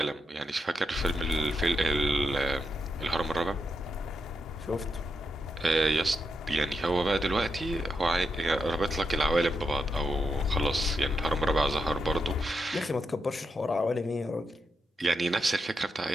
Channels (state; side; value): normal; both; correlation 0.84